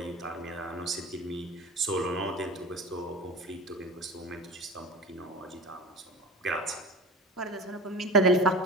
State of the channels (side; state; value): both; normal; correlation 0.33